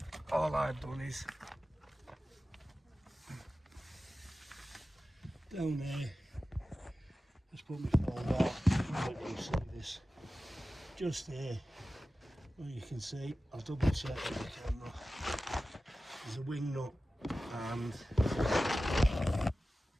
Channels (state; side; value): normal; both; correlation 0.95